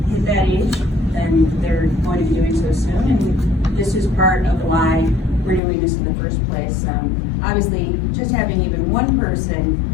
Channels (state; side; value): drops out; right; at 5.6 s